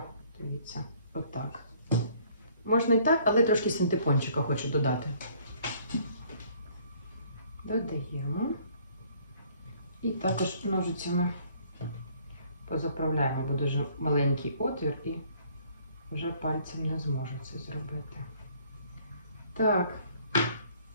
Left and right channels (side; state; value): both; inverted; correlation -0.60